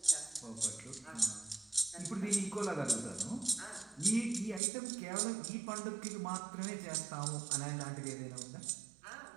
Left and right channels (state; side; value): drops out; left; at 4.6 s